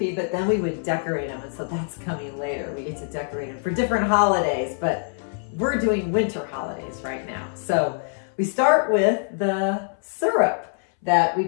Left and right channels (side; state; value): right; silent; 62 dB below the other